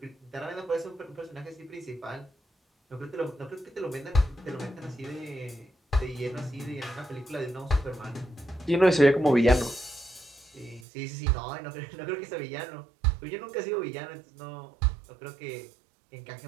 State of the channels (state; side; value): drops out; left; at 10.9 s